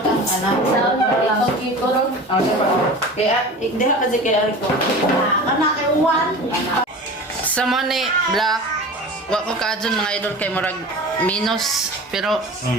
ang anak. Sa ito ron. Okay pa. Kaya, ikdiha ka Jay kaya ko. Anak kay Juan. Sa money, black. Wa ko kaadyon mga idol kay murag minus pero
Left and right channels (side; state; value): both; normal; correlation 0.35